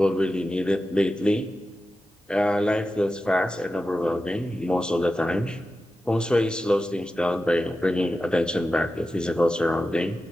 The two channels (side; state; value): both; normal; correlation 0.92